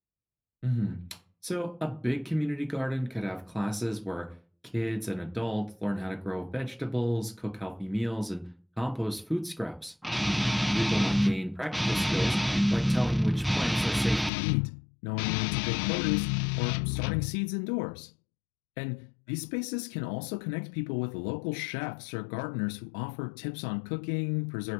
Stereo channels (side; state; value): right; drops out; at 14.3 s